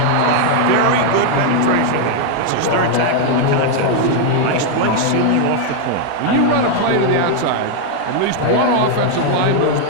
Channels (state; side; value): different; both; correlation 0.00